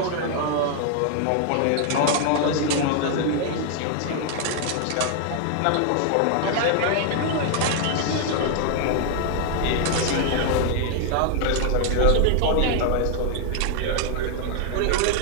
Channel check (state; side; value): different; both; correlation 0.00